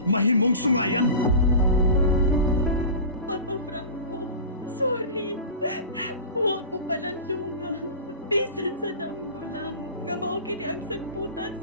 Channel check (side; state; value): both; inverted; correlation -0.33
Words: mahimong sungayan. Papa Franco, sorry. Huwag ko palandunga. Bisan sa damgo lang. Nga mao kini ang sagputan